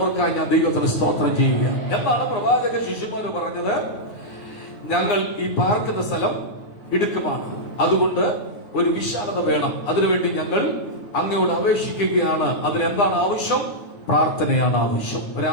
ഞാൻ ദൈവത്തിന് സ്തോത്രം ചെയ്യുക. എന്താണ് പ്രവാചക ശിഷ്യന്മാര് പറഞ്ഞത്? ഞങ്ങൾ ഈ പാർക്കുന്ന സ്ഥലം ഇടുക്കമാണ്, അതുകൊണ്ട് ഒരു വിശാലത വേണം. അതിനുവേണ്ടി ഞങ്ങൾ അങ്ങയോട് അപേക്ഷിക്കുകയാണ്. അതിനെന്താണ് ആവശ്യം? പ്രാർത്ഥനയാണ് ആവശ്യം.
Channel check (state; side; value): late; right; 9.7 ms